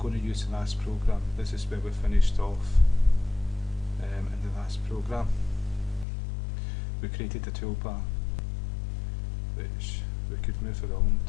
to use the last program. This is where we finished off in the last program. We created a toolbar which we could move around.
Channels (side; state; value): right; drops out; at 6.1 s